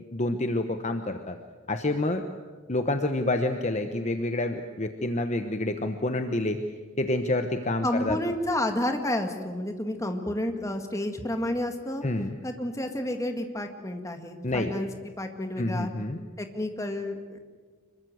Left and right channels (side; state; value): both; normal; correlation 0.56